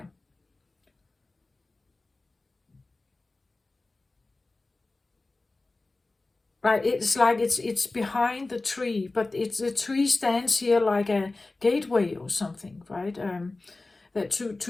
Right, it's like it's behind the tree, but the tree stands here like a gateway or something, right? That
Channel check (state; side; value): quieter; right; 3.3 dB